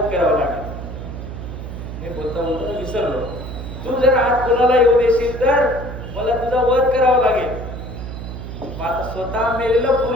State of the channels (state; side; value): noise; right; hum, 9 dB below the sound